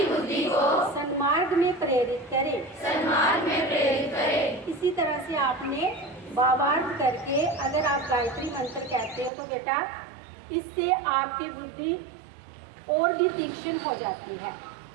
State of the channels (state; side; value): drops out; left; at 9.3 s